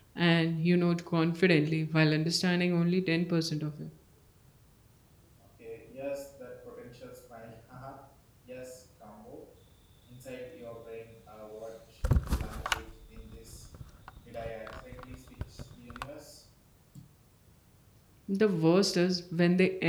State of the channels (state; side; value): identical; both; correlation 1.00